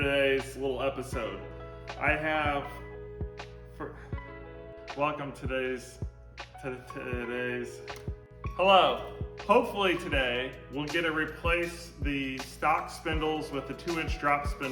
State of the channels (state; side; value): identical; both; correlation 1.00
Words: little episode. Hello. Hopefully today we'll get to replace the stock spindles with the 2-inch drop